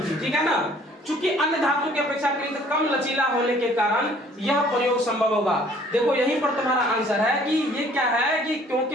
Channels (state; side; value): normal; both; correlation 0.57